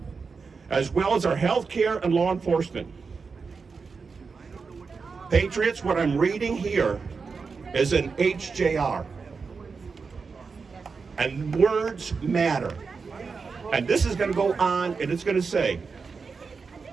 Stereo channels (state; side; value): quieter; left; 4.9 dB